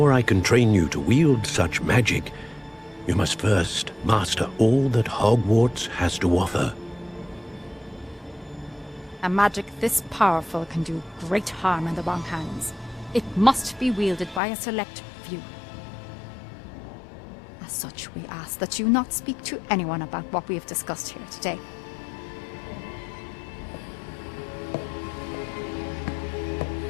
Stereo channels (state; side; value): drops out; right; at 14.4 s